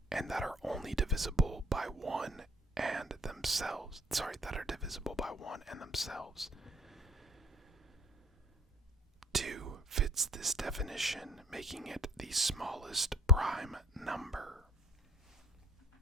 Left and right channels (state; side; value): normal; both; correlation 0.55